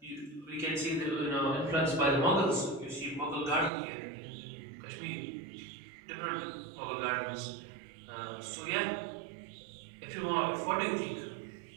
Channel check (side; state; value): left; drops out; at 3.7 s